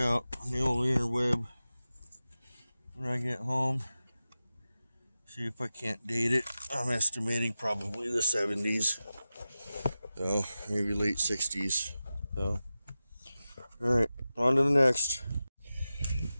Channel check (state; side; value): inverted; both; correlation -0.94